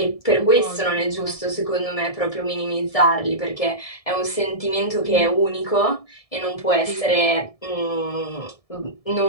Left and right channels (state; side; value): late; right; 1.7 ms